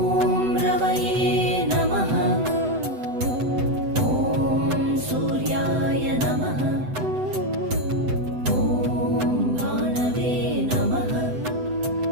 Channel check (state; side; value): late; left; 7.9 ms